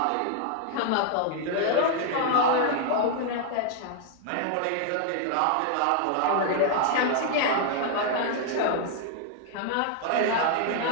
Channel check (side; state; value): both; different; correlation -0.01